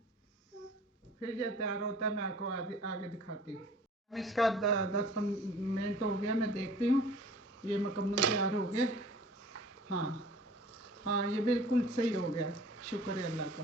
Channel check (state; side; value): normal; both; correlation 0.47